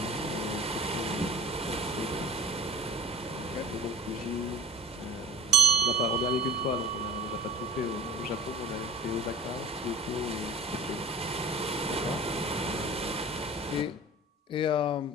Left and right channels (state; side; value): normal; both; correlation 0.45